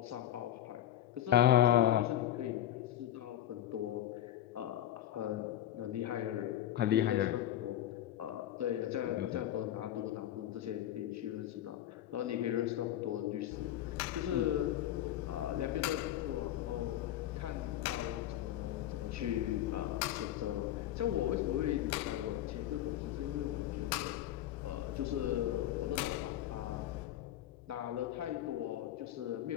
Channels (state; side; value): quieter; right; 12.5 dB